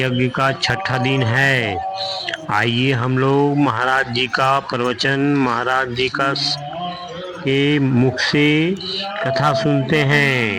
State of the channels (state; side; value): identical; both; correlation 1.00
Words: का छठा दिन है। आइए हम लोग महाराज जी का प्रवचन, महाराज जी का के मुख से कथा सुनते